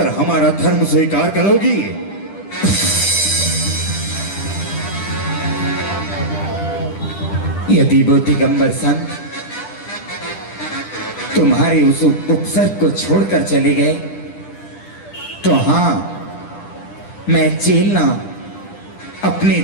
हमारा धर्म स्वीकार करोगी? यदि वो दिगंबर संत तुम्हारे उस उपसर्ग को छोड़कर चले गए तो हां, मैं चेलना अपने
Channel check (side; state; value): right; late; 10 ms